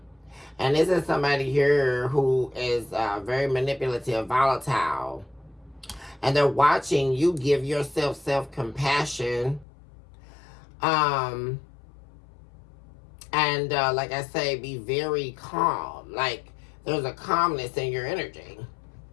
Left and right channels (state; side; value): drops out; right; at 9.7 s